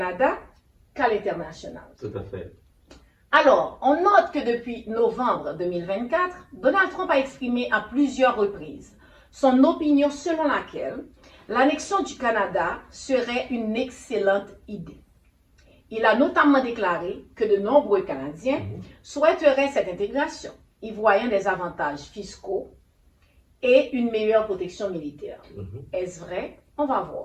qu'à l'international. Tout à fait. Alors, on note que depuis novembre 2024, Donald Trump a exprimé à plusieurs reprises son opinion selon laquelle l'annexion du Canada serait une excellente idée. Il a notamment déclaré que de nombreux Canadiens souhaiteraient cette intégration, y voyant des avantages fiscaux et une meilleure protection militaire. Mhm. Est-ce vrai? On va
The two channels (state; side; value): identical; both; correlation 1.00